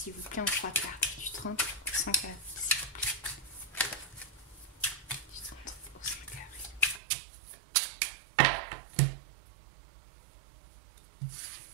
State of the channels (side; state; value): left; drops out; at 7.0 s